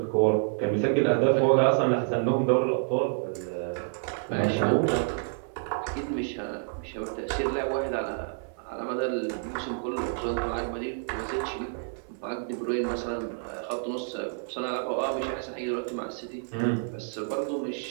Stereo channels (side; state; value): left; silent; 59 dB below the other